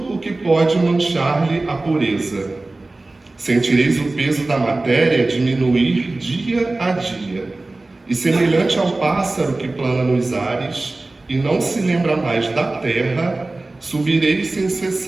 o que pode manchar-lhe a pureza. Sentireis o peso da matéria diminuir dia a dia. E semelhante ao pássaro que plana nos ares e não se lembra mais da terra, subireis sem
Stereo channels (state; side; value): quieter; left; 3.0 dB